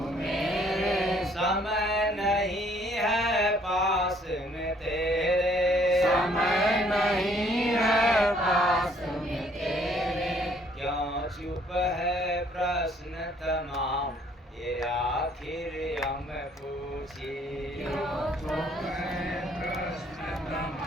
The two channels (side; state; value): both; normal; correlation 0.63